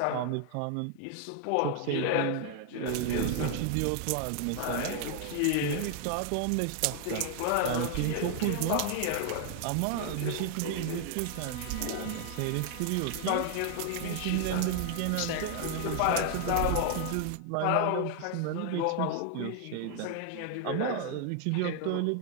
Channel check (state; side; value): different; both; correlation 0.00